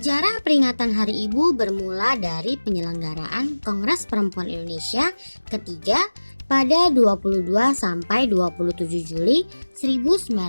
peringatan Hari Ibu bermula dari penyelenggaraan Kongres Perempuan Indonesia ketiga pada 22 sampai 27 Juli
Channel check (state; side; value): inverted; both; correlation -1.00